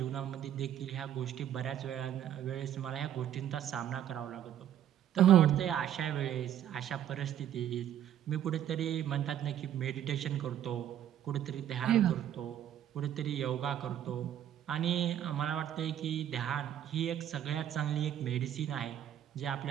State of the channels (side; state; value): left; quieter; 10.6 dB